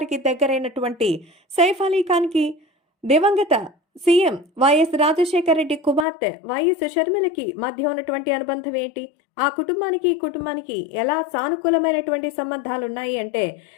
దగ్గరైనటువంటి సైఫ్ అలీ ఖాన్ కి దివంగత సీఎం వైఎస్ రాజశేఖర రెడ్డి కుమార్తె వైఎస్ షర్మిలకి మధ్య ఉన్నటువంటి అనుబంధం ఏంటి? ఆ కుటుంబానికి ఈ కుటుంబానికి ఎలా సానుకూలమైనటువంటి సంబంధాలు ఉన్నాయి అంటే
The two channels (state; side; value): drops out; right; at 6.1 s